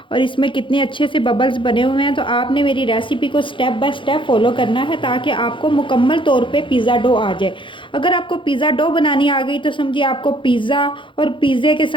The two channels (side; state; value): right; late; 0.24 ms